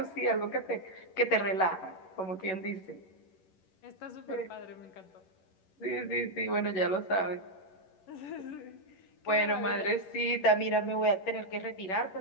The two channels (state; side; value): late; right; 11 ms